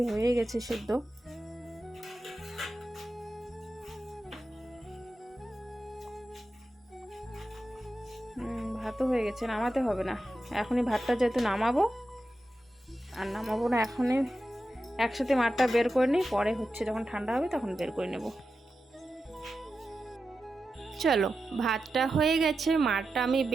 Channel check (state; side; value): normal; both; correlation 0.91